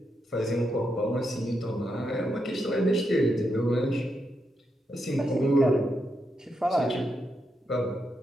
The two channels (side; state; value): both; normal; correlation 0.83